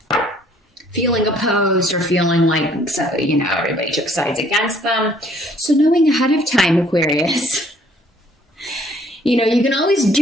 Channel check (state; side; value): normal; both; correlation 0.61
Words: feeling opposed, or feeling like, everybody took sides against them. So knowing ahead of time, Aquarius, you can always